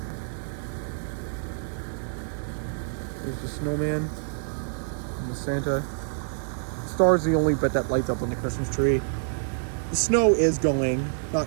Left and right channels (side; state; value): left; silent; digital silence